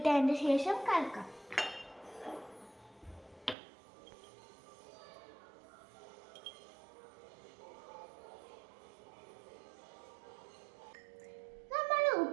ശേഷം കലക്കാം. നമ്മൾ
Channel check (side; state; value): left; drops out; at 3.6 s